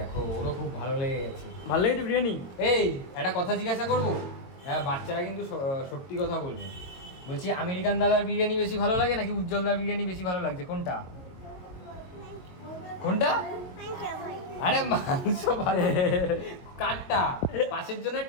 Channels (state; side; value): late; right; 22 ms